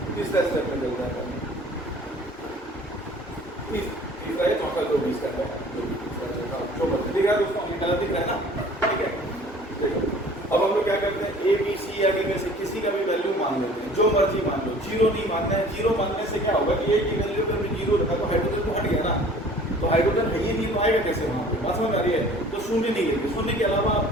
तीसरा स्टेप में चलता है, तीसरा है, चौथा जो भी स्टेप है, दिख रहा है दोस्तों, गलत दिख रहा है ना? ठीक है, देखो अब हम लोग क्या करते हैं, ABC या में से किसी का भी वैल्यू मान लेते हैं, जो मर्जी मान लो। 0 नहीं मानना है, 0 मानने से क्या होगा कि A की वैल्यू पर 0 रखा तो हाइड्रोजन तो हट गया ना, तो हाइड्रोजन है ही नहीं तो आएगा कैसे वहाँ पे? बात समझ आ रही है? तो शून्य नहीं लेंगे, शून्य के अलावा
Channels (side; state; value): both; normal; correlation 0.49